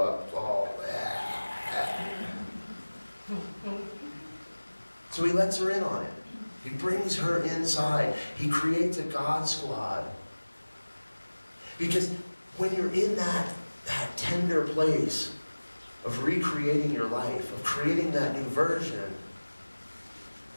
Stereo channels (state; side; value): inverted; both; correlation -1.00